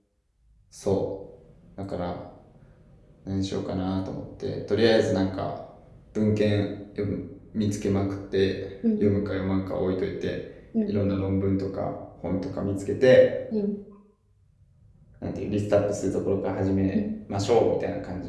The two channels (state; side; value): identical; both; correlation 1.00